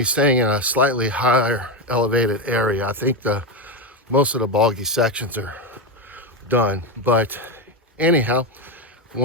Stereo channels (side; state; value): both; normal; correlation 0.11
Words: staying in a slightly higher elevated area. I think most of the boggy sections are done, but anyhow, I